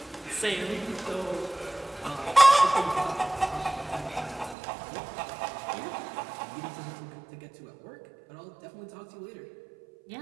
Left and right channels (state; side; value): drops out; left; at 4.5 s